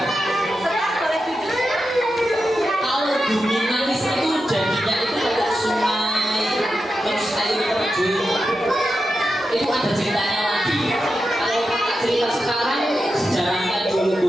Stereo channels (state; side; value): normal; both; correlation 0.89